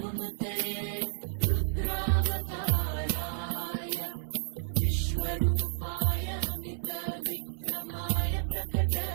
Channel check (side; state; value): left; silent; 57 dB below the other